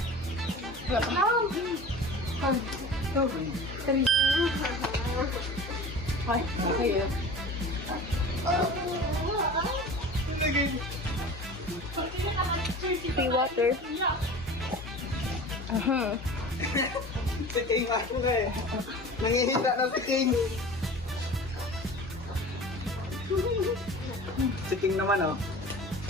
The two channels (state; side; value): normal; both; correlation 0.38